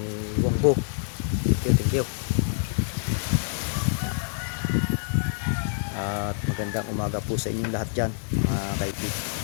Wongbo. Thank you. At magandang umaga po sa inyong lahat dyan mga kaipit.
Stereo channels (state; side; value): silent; right; digital silence